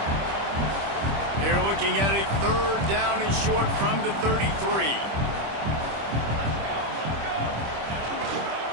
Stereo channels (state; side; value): late; left; 25 ms